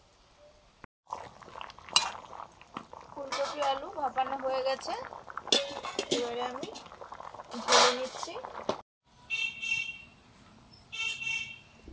ফুলকপি আলু ভাপানো হয়ে গেছে, এবারে আমি ঢেলে নিচ্ছি।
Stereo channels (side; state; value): both; identical; correlation 1.00